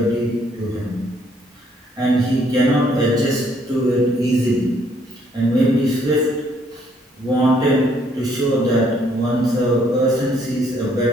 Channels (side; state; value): both; normal; correlation 0.67